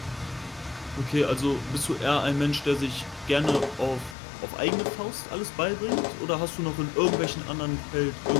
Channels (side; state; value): right; drops out; at 4.2 s